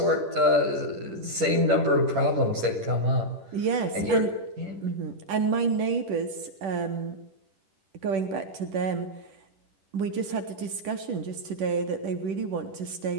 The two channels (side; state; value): left; late; 10 ms